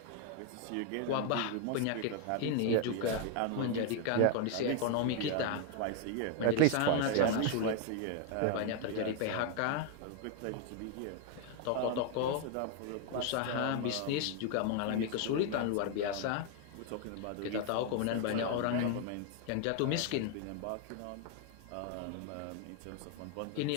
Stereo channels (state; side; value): different; both; correlation 0.01